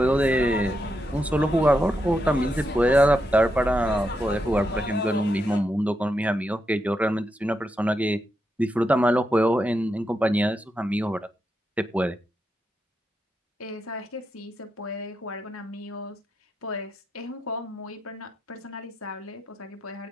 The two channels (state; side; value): normal; both; correlation 0.84